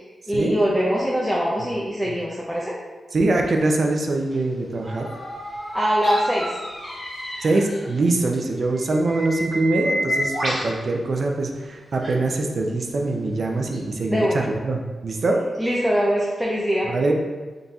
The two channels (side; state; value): both; normal; correlation 0.91